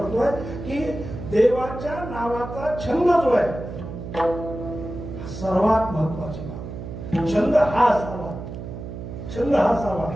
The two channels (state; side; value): noise; right; hum, 9 dB below the sound